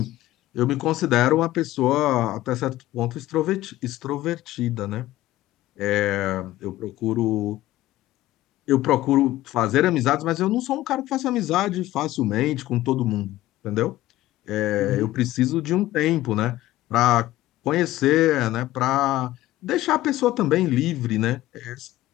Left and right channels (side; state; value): right; quieter; 15.9 dB